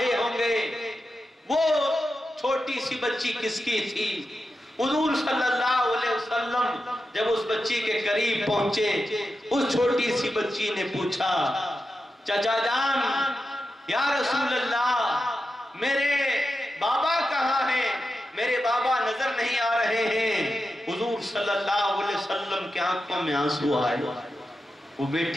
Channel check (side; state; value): both; normal; correlation 0.90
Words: ہوں گے۔ وہ چھوٹی سی بچی کس کی تھی؟ حضور صلی اللہ علیہ وسلم جب اس بچی کے قریب پہنچے، اس چھوٹی سی بچی نے پوچھا چچا جان، یا رسول اللہ میرے بابا کہاں ہیں؟ میرے بابا نظر نہیں آ رہے ہیں۔ حضور صلی اللہ علیہ وسلم کے آنکھوں میں آنسو آئے۔ وہ